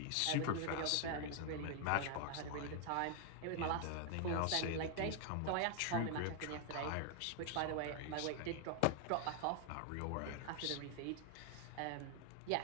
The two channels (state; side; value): different; both; correlation 0.00